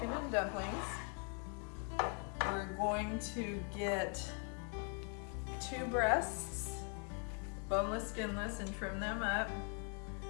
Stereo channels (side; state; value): right; quieter; 38.3 dB